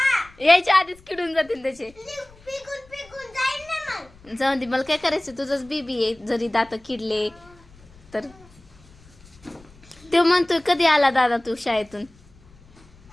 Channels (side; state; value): left; noise; rumble, 26 dB below the sound